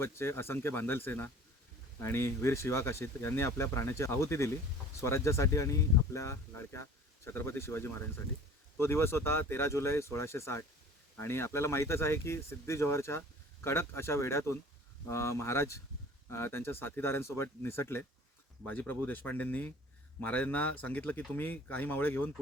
असंख्य बांधल सेना आणि वीर शिवा काशीत यांनी आपल्या प्राण्याची आहुती दिली स्वराज्यासाठी आणि आपल्या लाडक्या छत्रपती शिवाजी महाराजांसाठी. तो दिवस होता 13 जुलै 1660 आणि आपल्याला माहीतच आहे की सिद्धी जोहरच्या कडक अशा वेढ्यातून महाराज त्यांच्या साथीदारांसोबत निसटले. बाजीप्रभू देशपांडेंनी महाराजांना सांगितलं की तुम्ही काही मावळे घेऊन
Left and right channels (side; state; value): both; normal; correlation 0.46